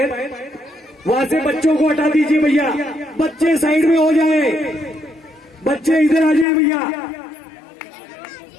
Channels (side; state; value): right; drops out; at 6.5 s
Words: वहां से बच्चों को हटा दीजिए भैया, बच्चे साइड में हो जाए, बच्चे इधर आ जाए भैया।